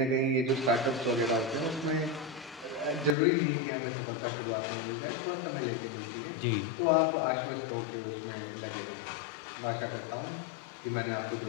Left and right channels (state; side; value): drops out; right; at 3.2 s